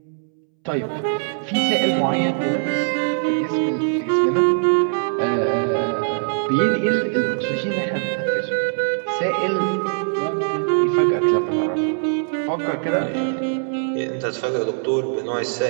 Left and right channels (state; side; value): silent; left; 65 dB below the other